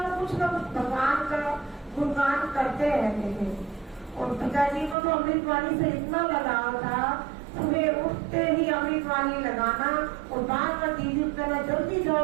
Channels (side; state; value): left; drops out; at 5.0 s